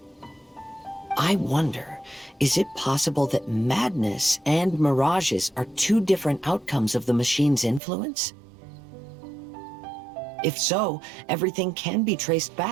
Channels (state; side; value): drops out; left; at 7.8 s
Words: I wonder, is it possible that madness and mirages are two different outcomes of the machine's influence? If so, everything can be traced